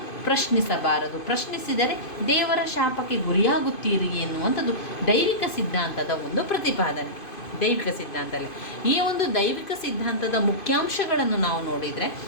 ಪ್ರಶ್ನಿಸಬಾರದು. ಪ್ರಶ್ನಿಸಿದರೆ ದೇವರ ಶಾಪಕ್ಕೆ ಗುರಿಯಾಗುತ್ತೀರಿ ಎನ್ನುವಂಥದ್ದು ದೈವಿಕ ಸಿದ್ಧಾಂತದ ಒಂದು ಪ್ರತಿಪಾದನೆ. ದೈವಿಕ ಸಿದ್ಧಾಂತದಲ್ಲಿ ಈ ಒಂದು ದೈವಿಕ ಸಿದ್ಧಾಂತದ ಮುಖ್ಯಾಂಶಗಳನ್ನು ನಾವು ನೋಡಿದರೆ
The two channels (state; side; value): late; right; 2.5 ms